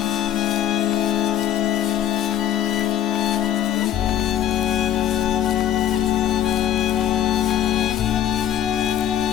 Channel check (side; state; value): right; quieter; 11.0 dB